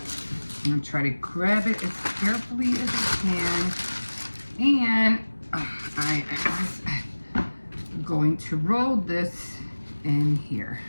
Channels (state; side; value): inverted; both; correlation -1.00